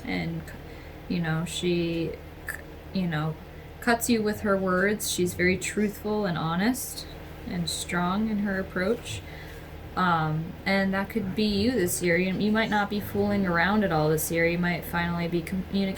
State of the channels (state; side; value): identical; both; correlation 1.00